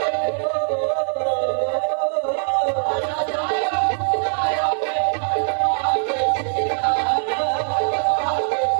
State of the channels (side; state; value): left; silent; digital silence